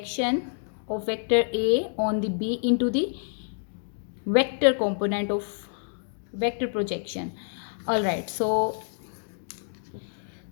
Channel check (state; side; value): silent; right; digital silence